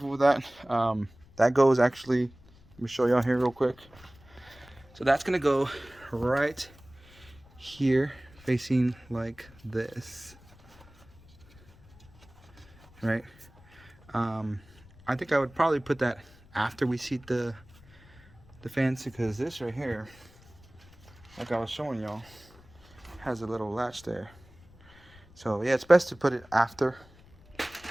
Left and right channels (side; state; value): left; noise; rumble, 25 dB below the sound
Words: with that. That goes actually, let me show y'all here real quick. So that's gonna go right here, facing like this, right? I think I would probably put that after we seat the fans, because this right here, like I was showing y'all, has a little latch there. So yeah, it's best to put it after.